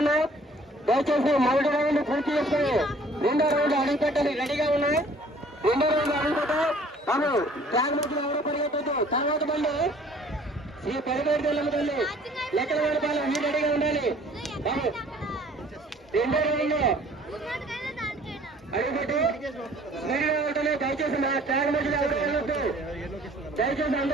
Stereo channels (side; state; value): both; normal; correlation 0.54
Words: ఉన్నాయి. దయచేసి మొదటి రౌండ్ పూర్తి చేసుకుని రెండో రౌండ్ అడుగు పెట్టాలి. రెడీగా ఉన్నాయి. రెండో రౌండ్ అడుగు పెట్టాలి. బాబు ట్రాక్ మధ్యలో ఎవరు పరిగెత్తద్దు. తర్వాత బండి శ్రీ పెరగేటి తెల్లమ్మ తల్లి లెక్కల వేడపాలెం మీరు రెడీగా ఉండాలి. బాబు రెండో రౌండ్ అడుగుపెట్టి స్పీడ్గా ఉంటుంది. దయచేసి మా ట్రాక్ మధ్యలో ఎవరు వెళ్ళొద్దు. దయచేసి